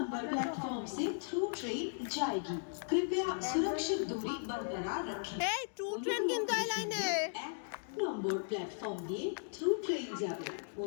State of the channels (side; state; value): right; silent; digital silence